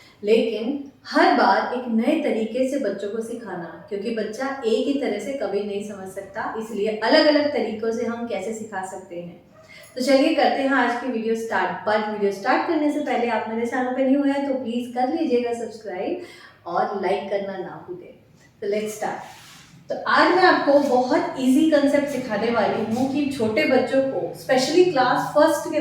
लेकिन हर बार एक नए तरीके से बच्चों को सिखाना, क्योंकि बच्चा एक ही तरह से कभी नहीं समझ सकता, इसलिए अलग अलग तरीकों से हम कैसे सिखा सकते हैं। तो चलिए करते हैं आज की video start. But video start करने से पहले आप मेरे चैनल पे न्यू हैं तो प्लीज कर लीजिएगा सब्सक्राइब और लाइक करना ना भूलें। तो लेट्स स्टार्ट। तो आज मैं आपको बहुत इजी कंसेप्ट सिखाने वाली हूँ कि छोटे बच्चों को, स्पेशली क्लास फर्स्ट के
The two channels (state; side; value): identical; both; correlation 1.00